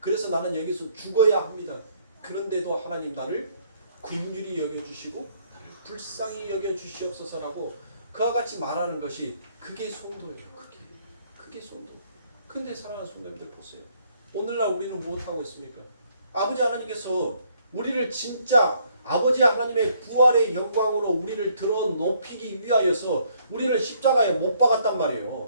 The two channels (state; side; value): inverted; both; correlation -0.67